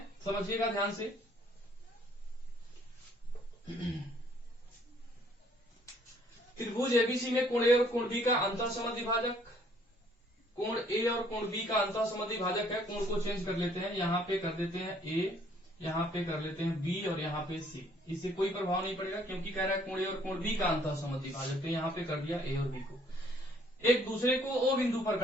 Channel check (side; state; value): both; normal; correlation 0.62